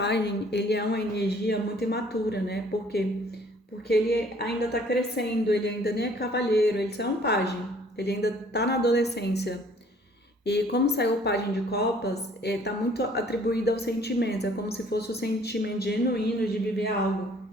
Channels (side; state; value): both; normal; correlation 0.57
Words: ele é uma energia muito imatura, né? Por quê? Porque ele ainda está crescendo, ele ainda nem é cavalheiro, ele só é um pajem, ele ainda está na adolescência. E como saiu o pajem de copas, está muito atribuído aos sentimentos, é como se fosse o sentimento genuíno de viver algo,